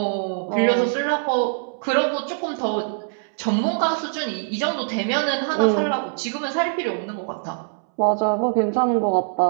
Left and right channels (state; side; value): silent; left; 63 dB below the other